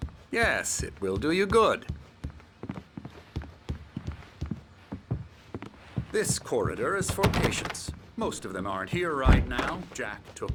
Yes, it will do you good. This corridor is for patients. Most of them aren't here right now. Jack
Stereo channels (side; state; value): both; identical; correlation 1.00